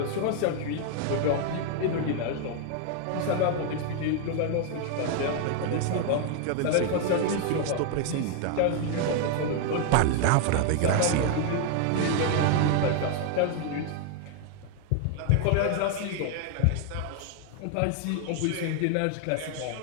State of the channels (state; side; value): different; both; correlation 0.00